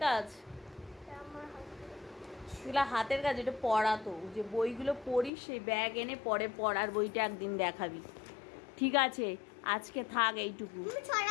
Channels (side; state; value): right; drops out; at 5.3 s